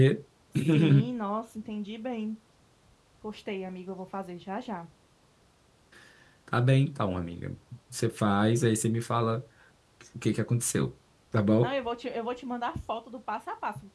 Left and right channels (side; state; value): both; identical; correlation 1.00